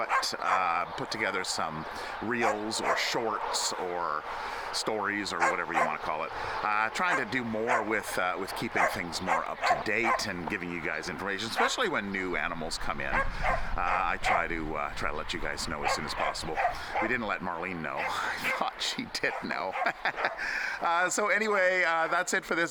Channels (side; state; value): both; identical; correlation 1.00